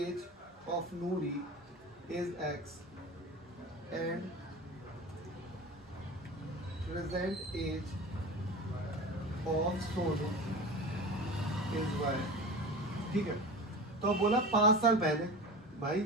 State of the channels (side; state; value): both; normal; correlation 0.32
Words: of Noori is X and present age of Sonu is Y, ठीक है। तो बोला 5 साल पहले,